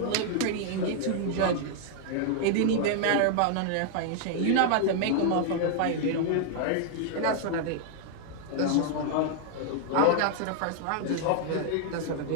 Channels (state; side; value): different; both; correlation 0.00